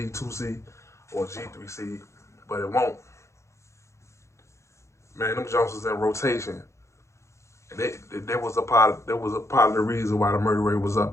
or G3C, but it won't. Man, them jumps was in rotation. And there was a part of the reason why the murder rate was up.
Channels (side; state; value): right; late; 0.14 ms